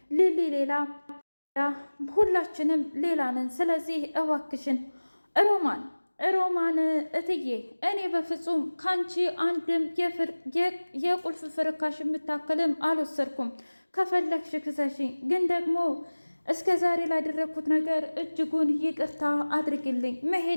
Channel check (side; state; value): both; inverted; correlation -1.00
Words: ሊሊ ሌላ፣ ሁላችንም ሌላ ነን። ስለዚህ እባክሽን ሮማን እትዬ፣ እኔ በፍጹም ካንቺ አንድም የቁልፍ ፍርካሽ የምታክልም አልወሰድኩም። ከፈለግሽ ክሰሽኝ፣ ግን ደግሞ እስከ ዛሬ ላደረግኩት ነገር እጅጉን ይቅርታ አድርግልኝ።